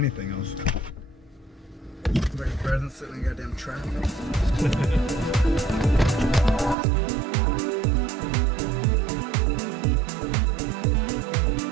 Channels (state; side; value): drops out; left; at 6.8 s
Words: else. Better than sitting in goddamn traffic.